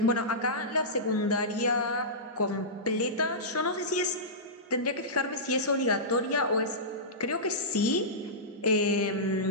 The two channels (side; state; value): both; normal; correlation -0.17